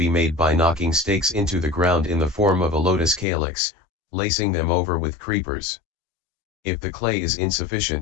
made by knocking stakes into the ground in the form of a lotus calyx, lacing them over with creepers. If the clay is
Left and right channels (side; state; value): right; drops out; at 3.2 s